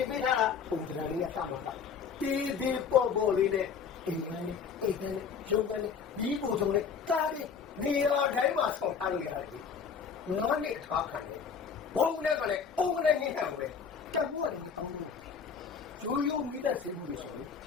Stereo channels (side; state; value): right; quieter; 6.3 dB